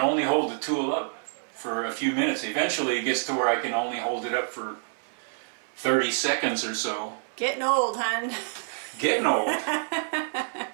hold the tool up for a few minutes. Eventually, it gets to where I can only hold it up for 30 seconds or so. Getting old, hon. Getting old.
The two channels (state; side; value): silent; left; 60 dB below the other